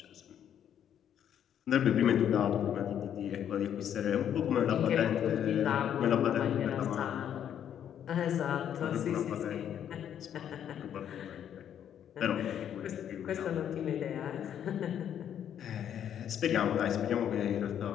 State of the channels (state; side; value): quieter; right; 9.6 dB